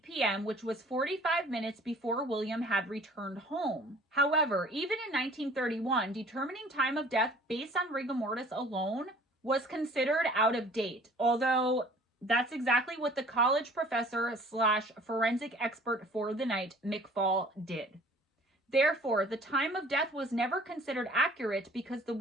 p.m., which was 45 minutes before William had returned home. However, even in 1931, determining time of death based on rigor mortis alone was considered out of date, although that's exactly what the college professor / forensic expert for the night, McFall, did. Therefore, the time of death was never considered accurate because the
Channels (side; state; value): both; normal; correlation 0.51